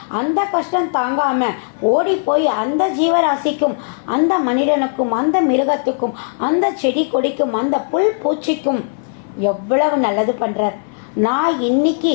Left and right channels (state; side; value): silent; right; 59 dB below the other